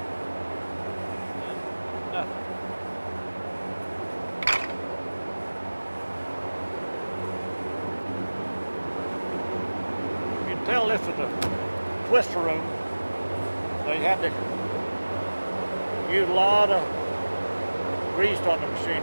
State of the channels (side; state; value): both; inverted; correlation -1.00